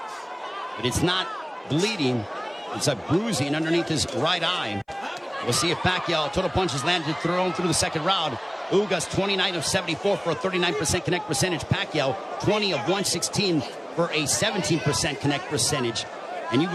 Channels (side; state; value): both; identical; correlation 1.00